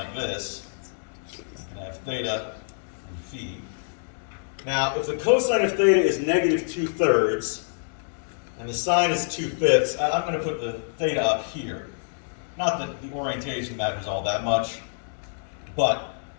this. I have theta and phi. Now, if the cosine of theta is negative 2/3, and the sine is 2/5, I'm going to put the theta up here. Not that the orientation matters all that much, but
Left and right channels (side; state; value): right; silent; digital silence